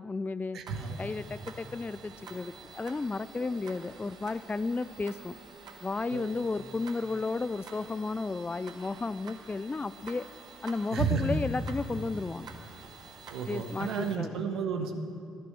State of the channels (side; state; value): both; normal; correlation 0.79